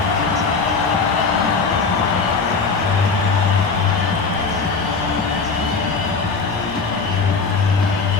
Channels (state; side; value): quieter; right; 4.7 dB